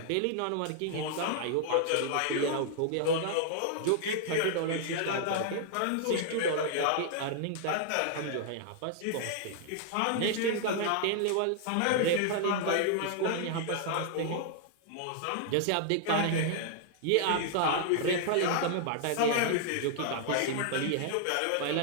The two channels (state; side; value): different; both; correlation 0.00